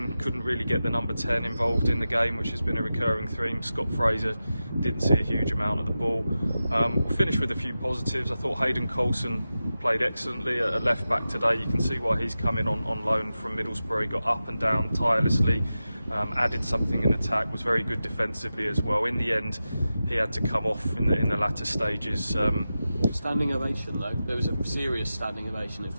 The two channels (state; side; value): inverted; both; correlation -0.93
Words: couldn't really get the number 10 involved in the game, which has been a recurring theme. Scott Fraser didn't see a huge amount of the ball. We'll finish with a few positives. I thought Hayden Coulson played excellently at left back today. You can see why he's coming on loan from Middlesbrough. He got up and down tirelessly, added something in attack, was very good defensively as well. In the end, he had to come off in the latter stages. Standing ovation though. There was a serious standing ovation, it